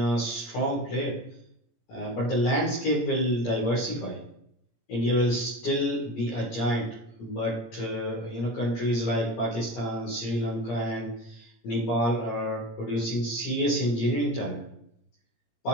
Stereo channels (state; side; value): late; right; 17 ms